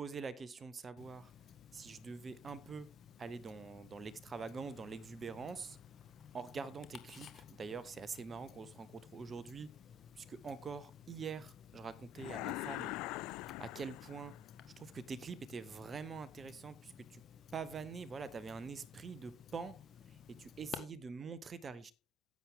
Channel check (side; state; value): both; normal; correlation 0.64